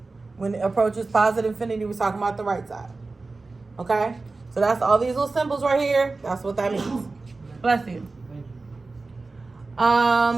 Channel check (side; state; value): left; quieter; 3.6 dB